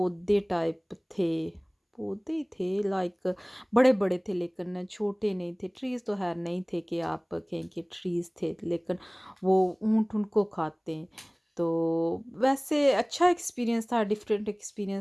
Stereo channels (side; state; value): both; identical; correlation 1.00